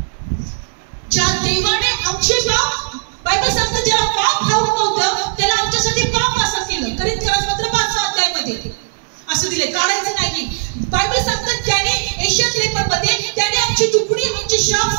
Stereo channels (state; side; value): silent; left; digital silence